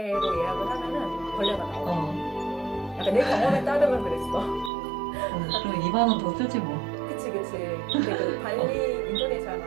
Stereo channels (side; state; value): left; drops out; at 4.7 s